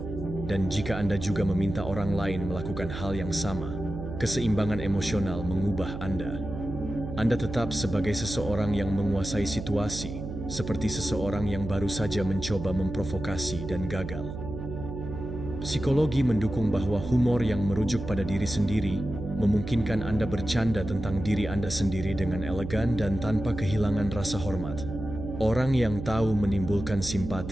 Dan jika Anda juga meminta orang lain melakukan hal yang sama, keseimbangan emosional mengubah Anda. Anda tetap sebagai seseorang yang menguasai situasi, seperti seseorang yang baru saja mencoba memprovokasi dan gagal. Psikologi mendukung bahwa humor yang merujuk pada diri sendiri memungkinkan Anda bercanda tentang diri Anda sendiri dengan elegan dan tanpa kehilangan rasa hormat. Orang yang tahu menimbulkan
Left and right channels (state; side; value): noise; right; hum, 7 dB below the sound